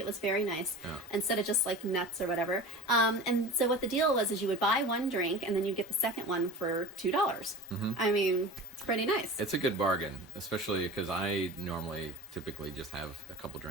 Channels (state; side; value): normal; both; correlation 0.35